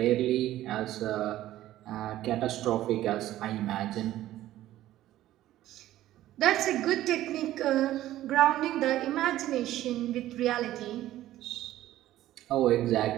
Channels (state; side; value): quieter; left; 14.2 dB